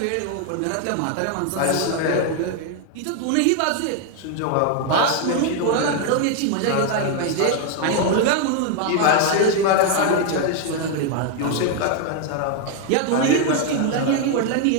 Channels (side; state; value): both; different; correlation 0.00